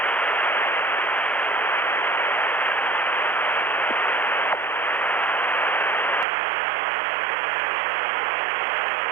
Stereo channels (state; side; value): drops out; left; at 6.2 s